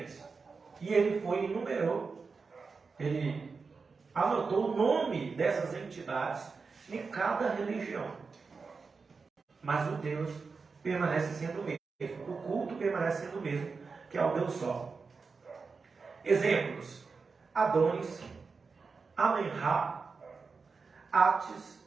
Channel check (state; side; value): quieter; left; 4.7 dB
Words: E ele foi e enumerou, ele anotou o nome dessas entidades em cada religião. Mas o Deus permanece sendo o mesmo. O culto permanece sendo o mesmo, que é o Deus Sol. Exemplos: Adonis, Amenra, Atis,